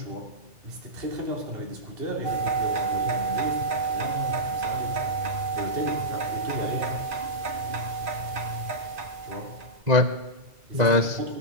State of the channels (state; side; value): late; left; 2.4 ms